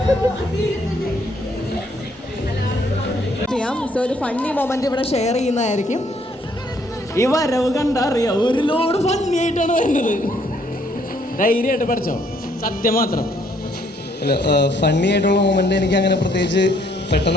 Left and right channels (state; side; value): normal; both; correlation 0.67